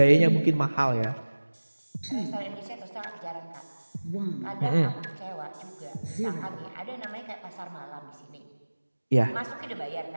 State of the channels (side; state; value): both; inverted; correlation -1.00